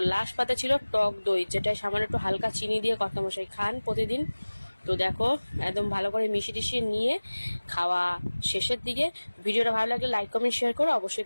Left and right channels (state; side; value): inverted; both; correlation -1.00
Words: লাস্ট পাতে ছিল টক দই, যেটা সামান্য একটু হালকা চিনি দিয়ে কর্তামশাই খান প্রতিদিন। তো দেখো একদম ভালো করে মিশিয়ে টিশিয়ে নিয়ে খাওয়া শেষের দিকে। ভিডিওটা ভালো লাগলে লাইক কমেন্ট শেয়ার করো,